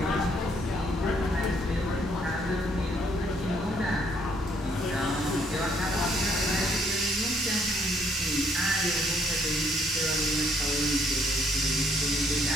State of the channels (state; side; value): normal; both; correlation 0.68